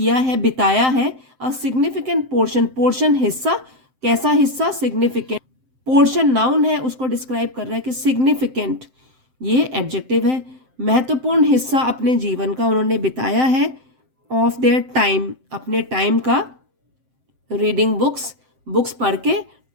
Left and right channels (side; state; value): left; late; 7.7 ms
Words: है, बिताया है, अ सिग्निफिकेंट पोर्शन, पोर्शन हिस्सा, कैसा हिस्सा, सिग्निफिकेंट, पोर्शन नाउन है, उसको डिस्क्राइब कर रहा है कि सिग्निफिकेंट ये एडजेक्टिव है, महत्वपूर्ण हिस्सा अपने जीवन का उन्होंने बिताया है, ऑफ देयर टाइम अपने टाइम का, रीडिंग बुक्स, बुक्स पढ़ के,